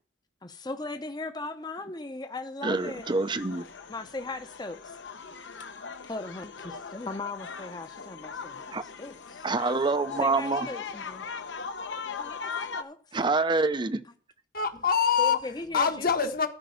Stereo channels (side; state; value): both; normal; correlation 0.06